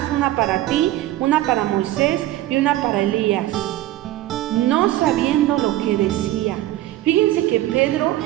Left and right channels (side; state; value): left; quieter; 15.0 dB